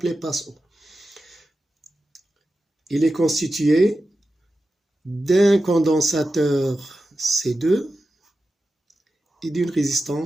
passe-haut. Il est constitué d'un condensateur C2 et d'une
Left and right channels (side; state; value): both; normal; correlation 0.92